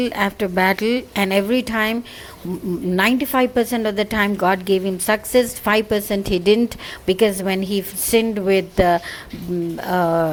after battle, and every time, 95% of the time, God gave him success. 5% he didn't, because when he sinned with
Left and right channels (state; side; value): identical; both; correlation 1.00